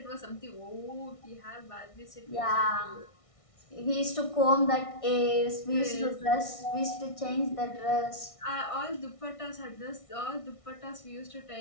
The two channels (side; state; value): right; late; 1.6 ms